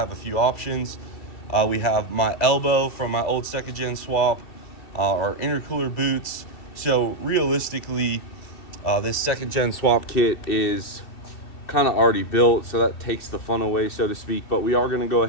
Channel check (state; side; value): late; right; 2.7 ms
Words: a few options. We have my elbow from my old second gen swap, our intercooler boots. So realistically, this second gen swap kit is kind of already built, so that takes the fun away, so to speak. But we are going to go